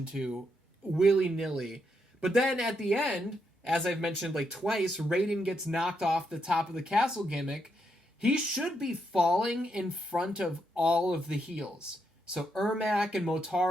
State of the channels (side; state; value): both; normal; correlation 0.80